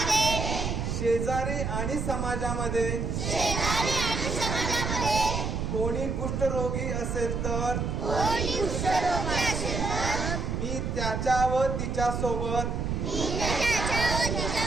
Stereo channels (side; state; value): right; noise; rumble, 2 dB below the sound